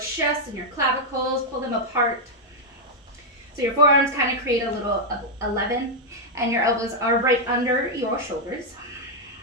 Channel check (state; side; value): normal; both; correlation -0.02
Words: and your clavicles, pull them apart. So your forearms kind of create a little 11 and your elbows are right under your shoulders.